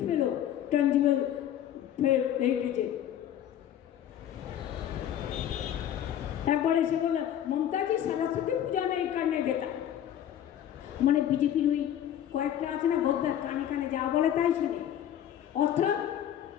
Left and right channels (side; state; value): right; quieter; 10.6 dB